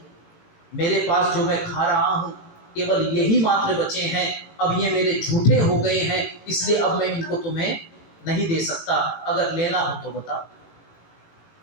मेरे पास जो मैं खा रहा हूं केवल यही मात्र बचे हैं, अब ये मेरे झूठे हो गए हैं, इसलिए अब मैं इनको तुम्हें नहीं दे सकता, अगर लेना हो तो बता।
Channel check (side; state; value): right; late; 18 ms